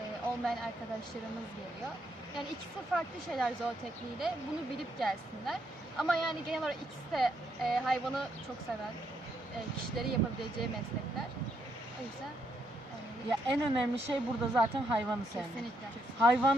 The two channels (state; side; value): normal; both; correlation 0.76